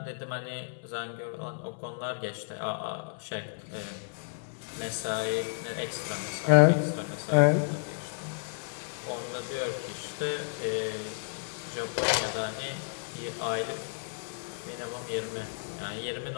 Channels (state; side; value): silent; right; 56 dB below the other